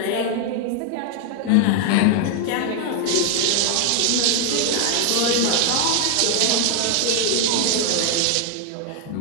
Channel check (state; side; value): different; both; correlation 0.00